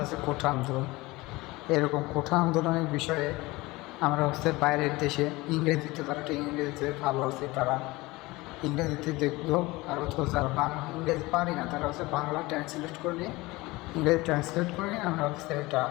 কোঠা আন্দোলন, এরকম কোঠা আন্দোলনের বিষয়ে আমরা হচ্ছে বাইরের দেশে ইংরেজিতে, তারা ইংরেজিতে ভালো হচ্ছে, তারা ইংরেজিতে দেখলো। আর যারা বাংলা ইংরেজি পারি না তারা হচ্ছে বাংলা ট্রান্সলেট করে নিয়ে, ইংরেজি ট্রান্সলেট করে নিয়ে আমরা হচ্ছে এটা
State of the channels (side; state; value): right; quieter; 21.3 dB